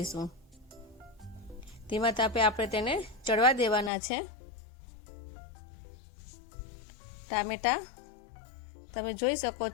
ધીમા તાપે આપણે તેને ચડવા દેવાના છે. ટામેટા તમે જોઈ શકો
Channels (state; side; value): drops out; right; at 3.9 s